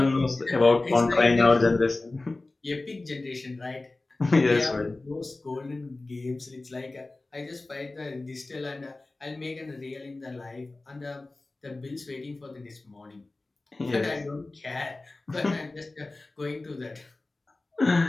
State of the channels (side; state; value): right; quieter; 3.1 dB